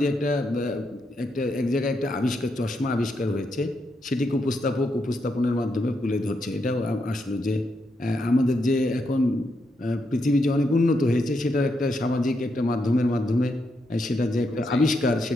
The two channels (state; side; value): normal; both; correlation 0.81